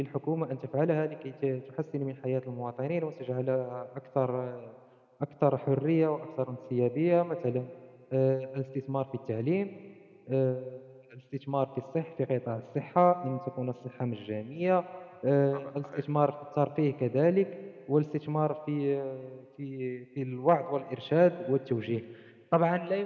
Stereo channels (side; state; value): both; identical; correlation 1.00